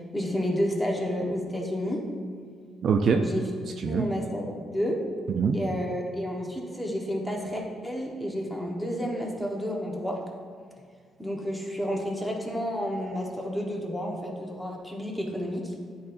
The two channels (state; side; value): normal; both; correlation 0.81